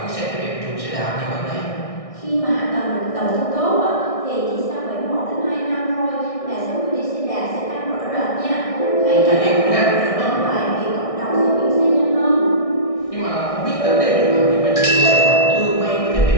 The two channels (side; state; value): right; late; 1.6 ms